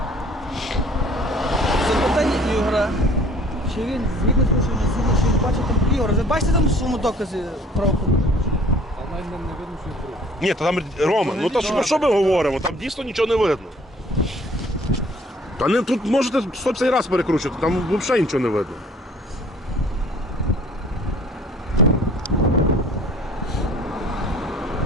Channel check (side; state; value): both; normal; correlation 0.53